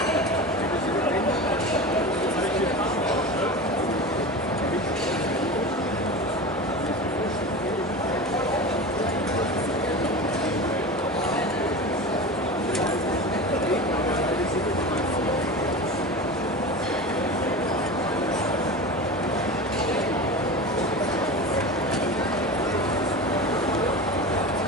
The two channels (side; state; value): both; normal; correlation 0.29